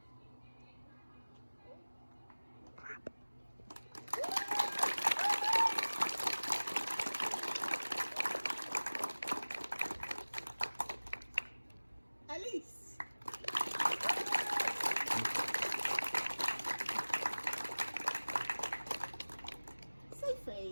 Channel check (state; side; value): inverted; both; correlation -1.00